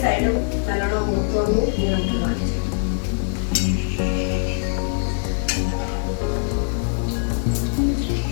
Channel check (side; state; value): right; silent; 64 dB below the other